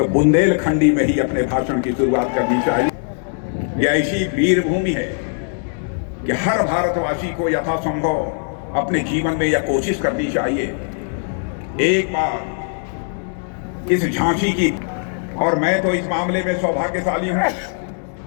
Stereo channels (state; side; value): silent; right; 66 dB below the other